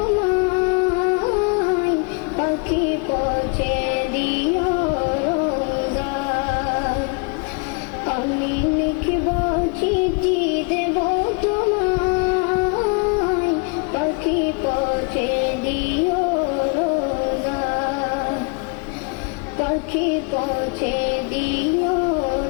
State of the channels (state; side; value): quieter; right; 31.4 dB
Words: পাখি পৌঁছে দিও রোজায়। আমি লিখব চিঠি দেব তোমায়, পাখি পৌঁছে দিও রোজায়। পাখি পৌঁছে দিও